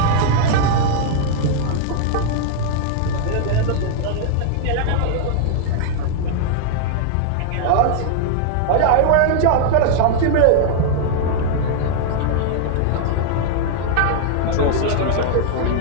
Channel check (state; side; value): different; both; correlation -0.01